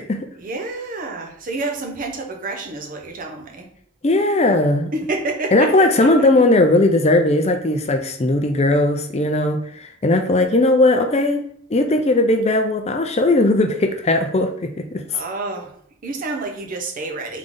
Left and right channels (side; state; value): both; normal; correlation 0.38